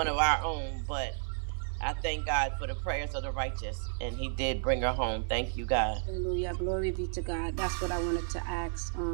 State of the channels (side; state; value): left; silent; digital silence